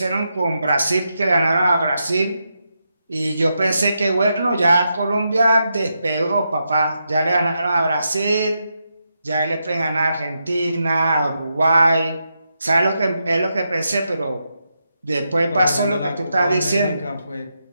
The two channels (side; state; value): both; inverted; correlation -0.84